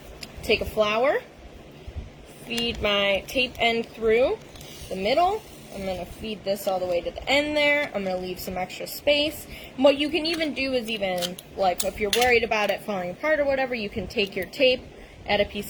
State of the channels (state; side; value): identical; both; correlation 1.00